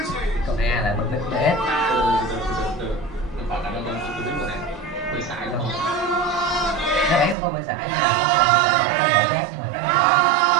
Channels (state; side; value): drops out; left; at 7.4 s